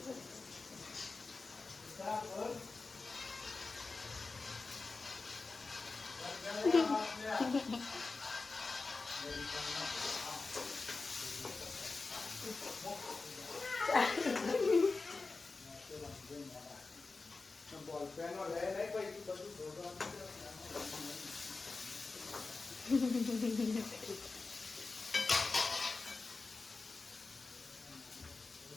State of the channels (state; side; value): quieter; right; 3.9 dB